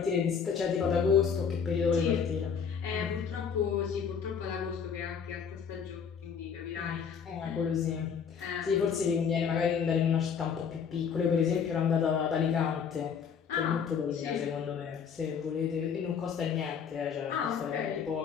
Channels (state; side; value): quieter; right; 6.8 dB